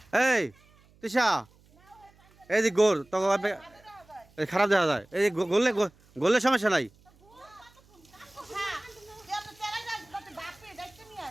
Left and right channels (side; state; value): right; noise; hum, 29 dB below the sound